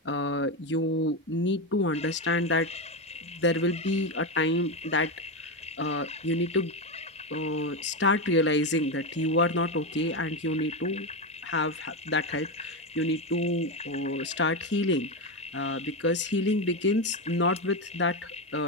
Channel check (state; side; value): normal; both; correlation 0.12